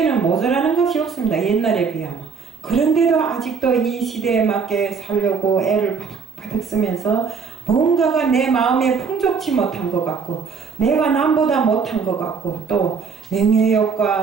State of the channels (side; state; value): left; quieter; 5.6 dB